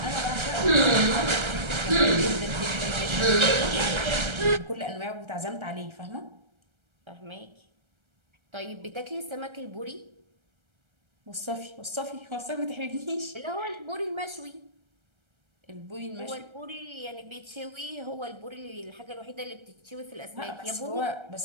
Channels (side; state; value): left; late; 1.3 ms